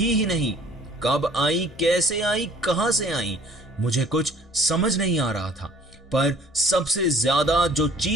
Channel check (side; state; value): both; normal; correlation 0.54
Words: ही नहीं। कब आई, कैसे आई, कहां से आई, मुझे कुछ समझ नहीं आ रहा था। पर सबसे ज्यादा जो